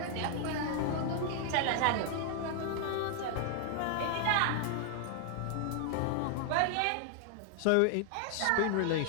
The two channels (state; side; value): different; both; correlation 0.00